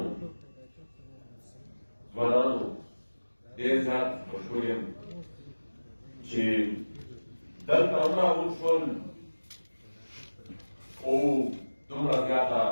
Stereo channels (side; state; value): both; inverted; correlation -1.00